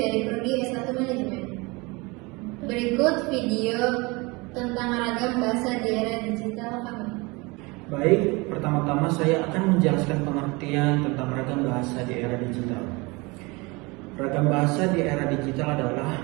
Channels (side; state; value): left; quieter; 25.7 dB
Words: dari Prodi S1 Manajemen. Berikut video tentang ragam bahasa di era digital kami. Baik, pertama-tama saya akan menjelaskan pengertian tentang ragam bahasa di era digital. Ragam bahasa di era digital adalah